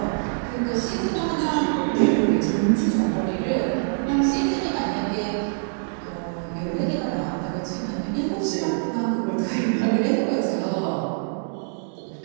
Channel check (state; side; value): silent; left; digital silence